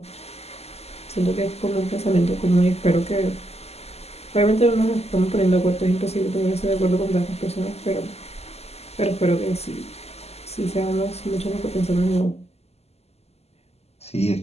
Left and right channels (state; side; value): late; right; 0.30 ms